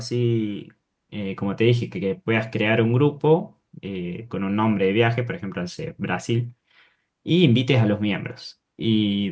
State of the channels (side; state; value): both; identical; correlation 1.00